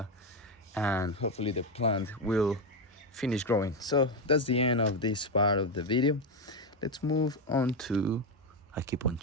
and hopefully the plant will finish growing. So that's the end of this part of the video. Let's move on to, I keep on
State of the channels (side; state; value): both; normal; correlation 0.09